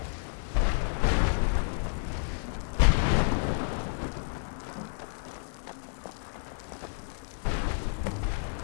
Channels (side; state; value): right; silent; 58 dB below the other